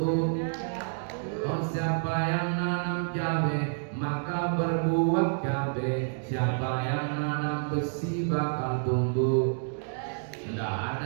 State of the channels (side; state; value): left; silent; digital silence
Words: Oh, siapa yang nanam cabe maka berbuah cabe. Siapa yang nanam besi bakal tumbuh. Tidak